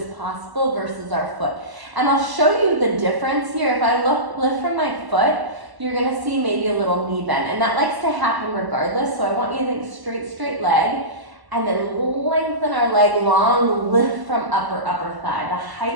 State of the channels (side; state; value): left; late; 1.0 ms